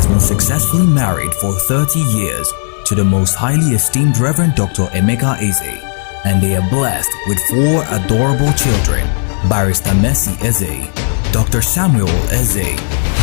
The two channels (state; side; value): silent; right; digital silence